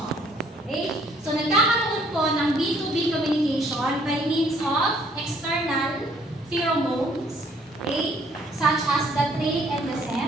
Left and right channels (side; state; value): both; normal; correlation 0.63